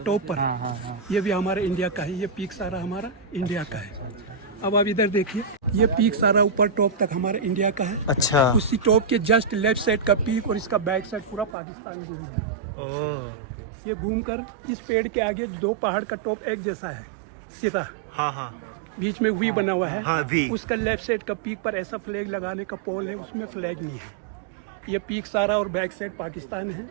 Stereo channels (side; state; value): left; drops out; at 11.6 s